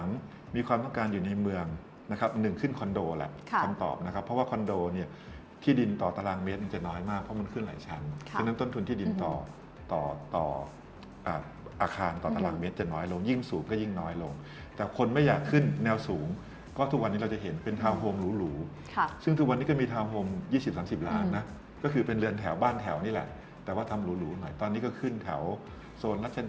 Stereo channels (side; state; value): both; identical; correlation 1.00